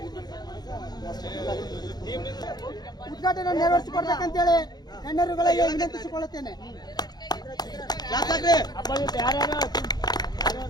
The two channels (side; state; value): right; late; 0.20 ms